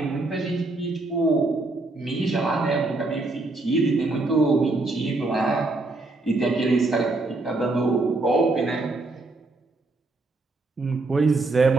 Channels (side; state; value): left; quieter; 3.1 dB